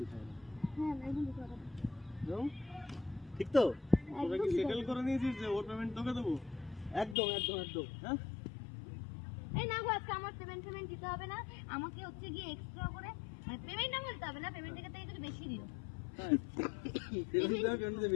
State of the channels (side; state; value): right; drops out; at 7.2 s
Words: দিতে হবে। হ্যাঁ একদম দিতে হবে। ঠিক তো? তোরা কি সেটেল করে নিয়েছিস যে ওর পেমেন্ট তোকে দেবো? একদম একদম একদম। হ্যাঁ এই না গো, আজকে আমার পেমেন্ট দিতে হবে না, আমাকে হচ্ছে গিয়ে এক্সট্রা করে পেমেন্ট না বলতে হবে না, পেমেন্টের থেকে একটু বেশি দিও। পেমেন্ট